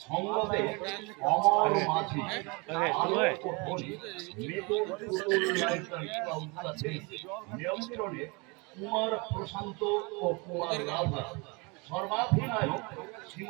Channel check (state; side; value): quieter; left; 29.2 dB